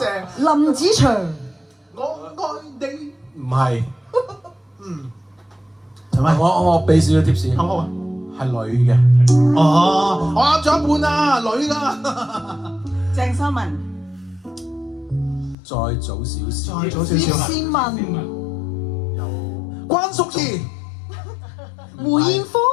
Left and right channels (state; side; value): drops out; right; at 15.6 s